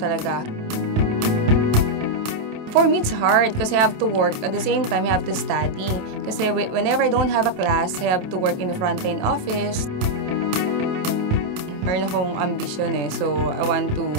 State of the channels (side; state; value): left; late; 28 ms